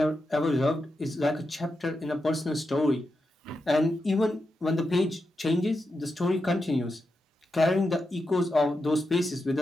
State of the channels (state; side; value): normal; both; correlation 0.87